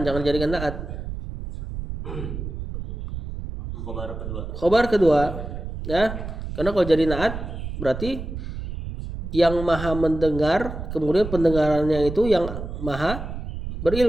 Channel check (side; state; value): right; noise; rumble, 7 dB below the sound